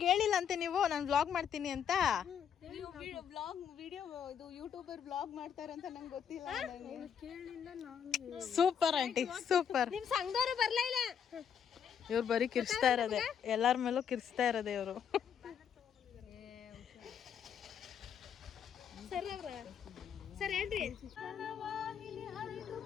ಹೇಳಿಲ್ಲ ಅಂತೆ ನೀವು ನಾನು ವ್ಲಾಗ್ ಮಾಡ್ತೀನಿ ಅಂತ? ಯೂಟ್ಯೂಬರ್ ವ್ಲಾಗ್ ಮಾಡ್ತಾರೆ ಅಂತ ನಂಗೆ ಗೊತ್ತಿಲ್ಲ. Super aunty super. ನಿಮ್ ಸಂಘದವರು ಬರ್ಲೇ ಇಲ್ಲ. ಇವ್ರು ಬರೀ ಕಿರ್ಸ್ತಾ ಇರೋದೆ, ಎಲ್ಲರ ಮೇಲೂ ಕಿರ್ಸ್ತಾ ಇರೋದೆ ಇವರು.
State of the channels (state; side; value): quieter; right; 8.1 dB